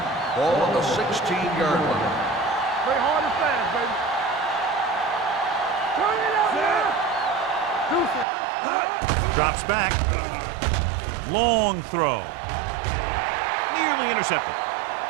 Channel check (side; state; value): left; drops out; at 8.2 s